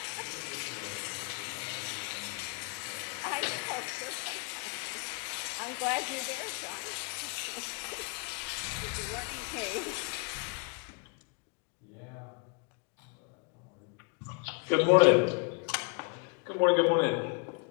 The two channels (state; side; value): quieter; right; 33.6 dB